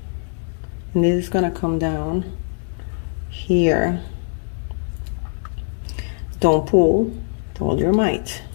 and this is gonna come down here. Don't pull with all your might.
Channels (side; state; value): right; silent; digital silence